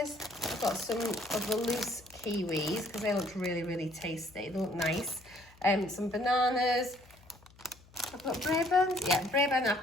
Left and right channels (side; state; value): left; noise; hum, 26 dB below the sound